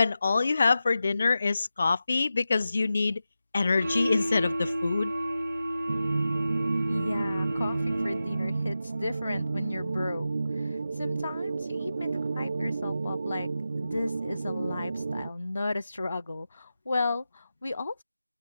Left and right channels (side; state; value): both; inverted; correlation -0.92